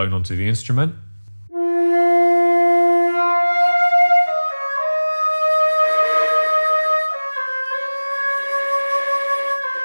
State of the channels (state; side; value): inverted; both; correlation -1.00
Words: onto the instrument.